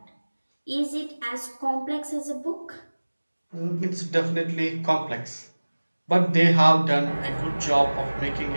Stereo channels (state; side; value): inverted; both; correlation -1.00